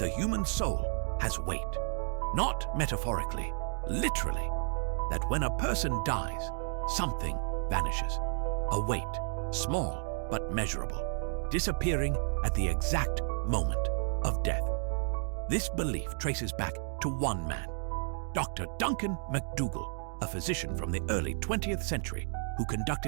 human soul has weight. Not metaphorically, literally, that when a person dies, something vanishes. A weight, small but measurable, disappearing at the exact moment of death. This belief traces back to one man, Dr. Duncan MacDougall, a physician from the early 20th century who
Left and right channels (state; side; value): silent; left; 56 dB below the other